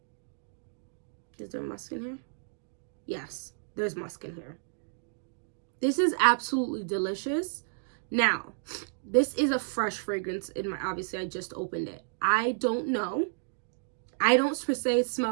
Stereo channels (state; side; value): silent; left; digital silence